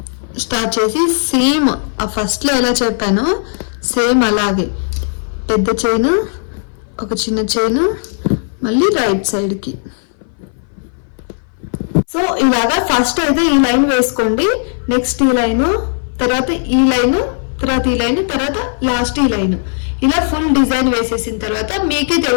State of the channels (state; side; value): silent; right; 60 dB below the other